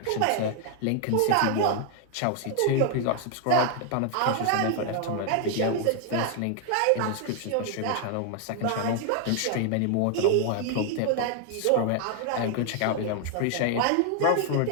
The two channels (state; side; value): different; both; correlation 0.00